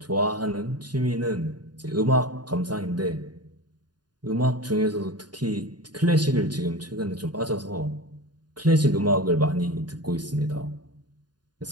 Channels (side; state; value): left; late; 0.70 ms